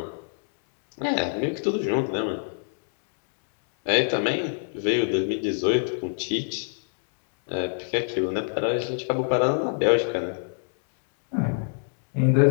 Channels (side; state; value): right; silent; digital silence